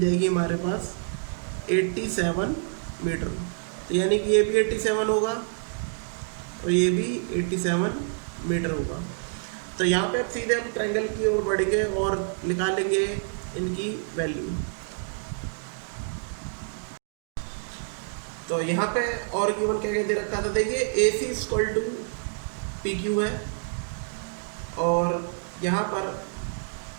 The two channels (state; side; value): silent; left; digital silence